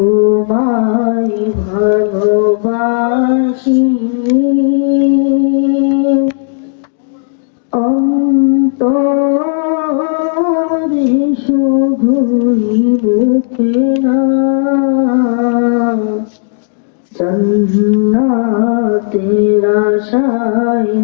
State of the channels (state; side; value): silent; right; digital silence